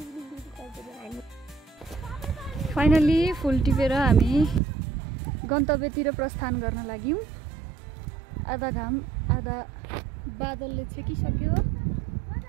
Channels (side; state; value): left; drops out; at 4.6 s